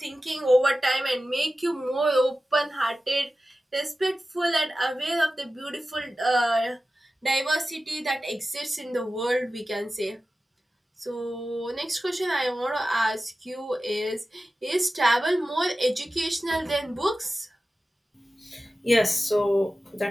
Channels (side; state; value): both; normal; correlation 0.94